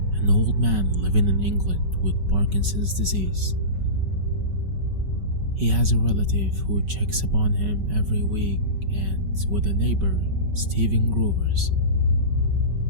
an old man living in England with Parkinson's disease. He has a relative who checks upon him every week and with a neighbor, Stephen Groovers.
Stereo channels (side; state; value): left; late; 5.3 ms